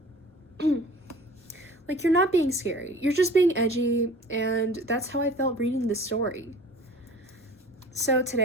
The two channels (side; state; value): both; normal; correlation 0.44